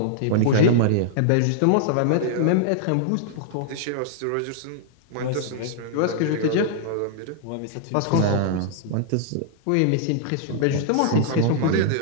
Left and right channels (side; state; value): both; different; correlation -0.01